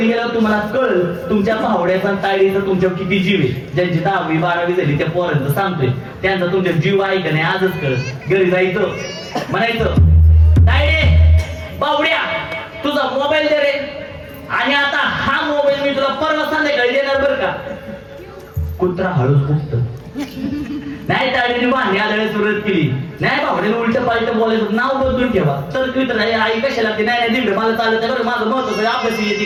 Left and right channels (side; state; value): both; identical; correlation 1.00